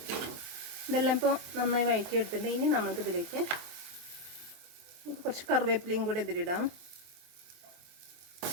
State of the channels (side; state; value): left; late; 24 ms